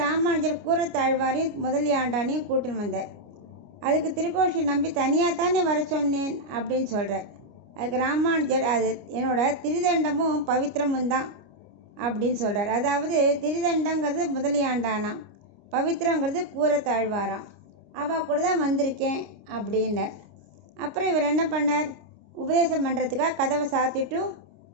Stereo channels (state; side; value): late; left; 29 ms